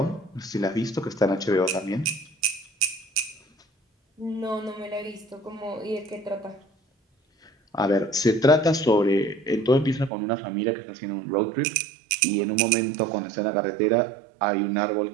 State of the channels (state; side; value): drops out; left; at 10.1 s